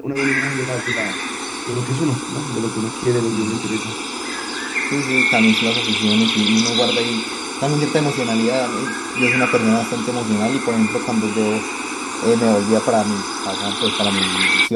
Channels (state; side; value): identical; both; correlation 1.00